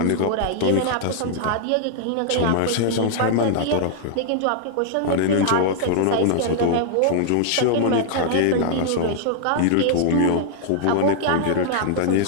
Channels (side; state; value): both; different; correlation -0.01